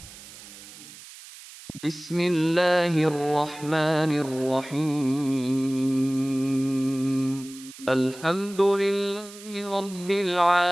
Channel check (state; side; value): noise; right; hiss, 17 dB below the sound